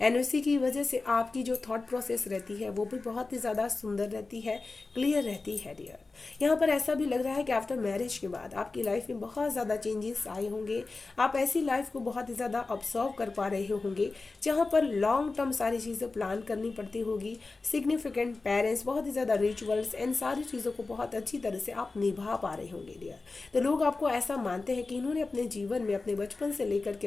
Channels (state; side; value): quieter; right; 3.7 dB